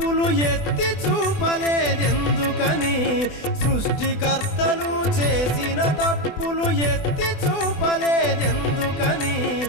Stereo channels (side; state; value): right; late; 24 ms